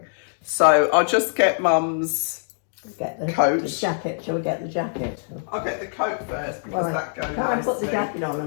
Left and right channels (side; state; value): right; silent; digital silence